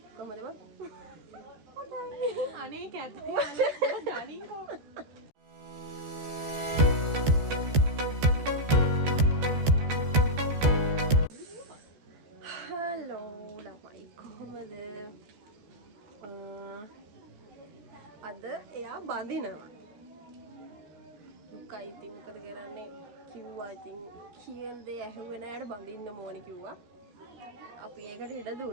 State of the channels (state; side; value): late; left; 14 ms